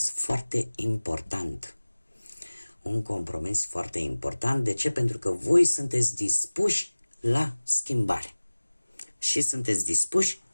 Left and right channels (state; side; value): inverted; both; correlation -1.00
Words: foarte important. Un compromis foarte important. De ce? Pentru că voi sunteți dispuși la schimbare. Și sunteți dispuși